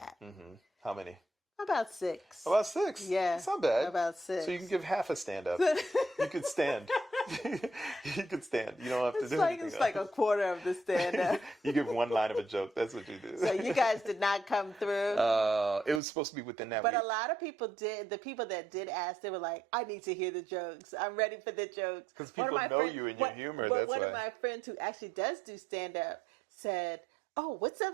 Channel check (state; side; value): drops out; left; at 16.0 s